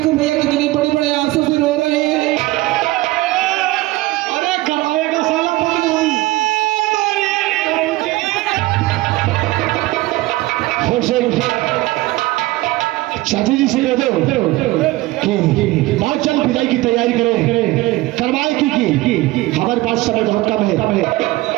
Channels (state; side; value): quieter; left; 18.9 dB